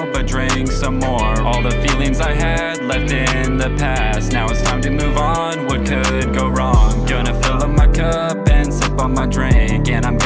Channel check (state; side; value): identical; both; correlation 1.00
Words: but drink some more. All the feelings I had left in the past. Now it's time to move on. What could go wrong? Gonna fill up my cup and sip on my drink, and I'm